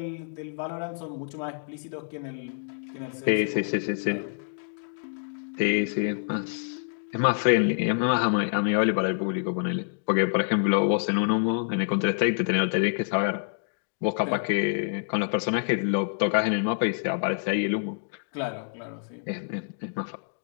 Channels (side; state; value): right; silent; digital silence